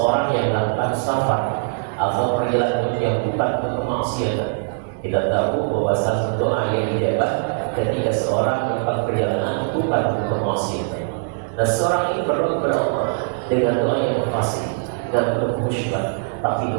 yang melakukan safar atau perjalanan yang bukan untuk kemaksiatan. Kita tahu bahwa salah satu doa yang dijawab ketika seorang melakukan perjalanan bukan untuk kemaksiatan. Dan seorang ini berdoa kepada Allah dengan doa yang pasti dan penuh khusyuk, tapi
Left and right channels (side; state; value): left; silent; digital silence